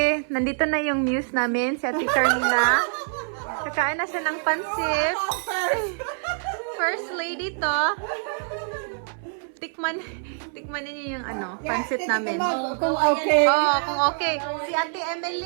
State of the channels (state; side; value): silent; left; 62 dB below the other